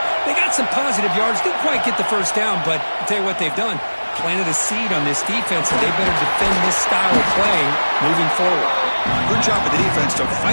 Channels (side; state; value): both; inverted; correlation -1.00